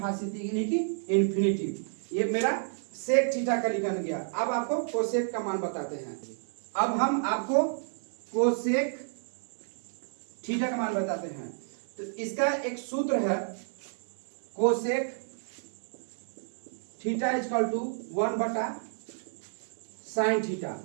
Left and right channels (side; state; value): left; silent; digital silence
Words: यानी कि इन्फिनिटिव। ये मेरा सेक थीटा का लिखा गया। अब आपको कोसेक का मान बताते हैं। अब हम आपको कोसेक थीटा का मान बताते हैं। तो इसका एक सूत्र है, कोसेक थीटा इक्वल टू 1/साइन थीटा,